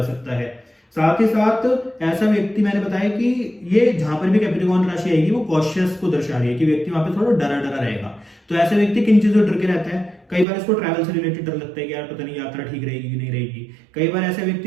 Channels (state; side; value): drops out; left; at 10.5 s